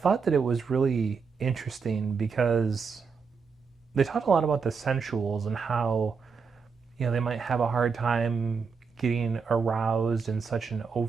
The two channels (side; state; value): left; quieter; 5.4 dB